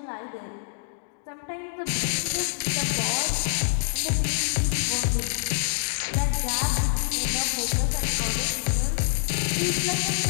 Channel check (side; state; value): right; silent; digital silence